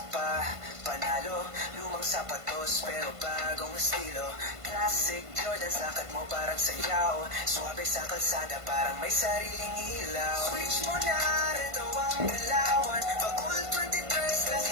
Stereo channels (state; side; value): late; left; 1.5 ms